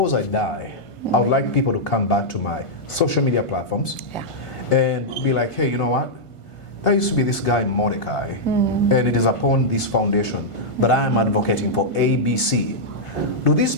I die, I would like people to come back to my social media platforms and be like, hey, you know what? There used to be this guy, Mordecai, and it is upon this foundation that I am advocating for ABC. Do these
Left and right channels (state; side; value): late; right; 1.5 ms